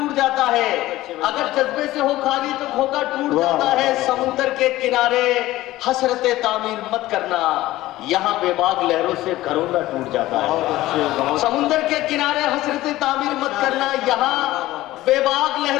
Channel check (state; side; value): quieter; right; 16.5 dB